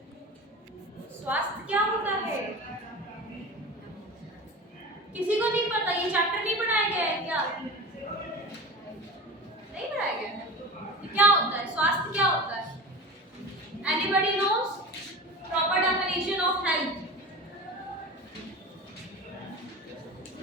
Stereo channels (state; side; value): normal; both; correlation 0.32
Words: स्वास्थ्य क्या होता है? किसी को नहीं पता? ये चैप्टर नहीं पढ़ाया गया है क्या? नहीं पढ़ाया गया है? क्या होता है स्वास्थ्य? क्या होता है? Anybody knows proper definition of health?